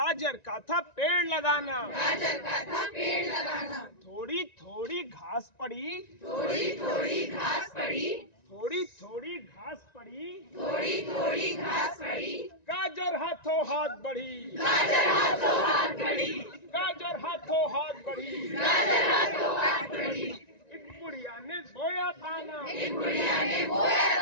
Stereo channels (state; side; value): late; right; 1.9 ms